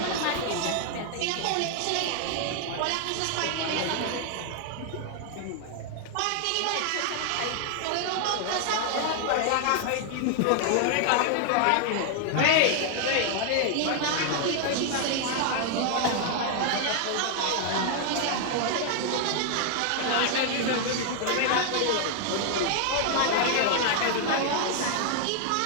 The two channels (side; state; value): both; different; correlation 0.00